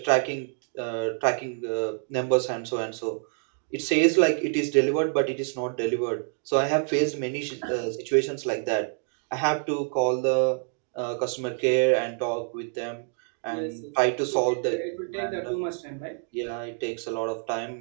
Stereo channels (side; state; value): left; silent; 57 dB below the other